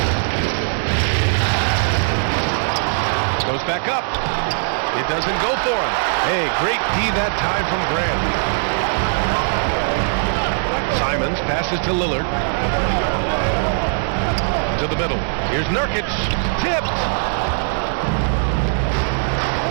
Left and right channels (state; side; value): silent; left; digital silence